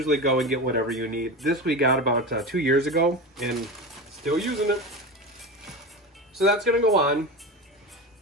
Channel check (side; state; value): both; normal; correlation 0.25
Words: go and get whatever you need. This we got about 2 years ago and still using it. So that's gonna go on.